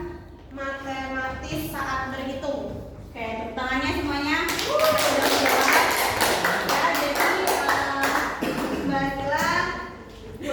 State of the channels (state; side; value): identical; both; correlation 1.00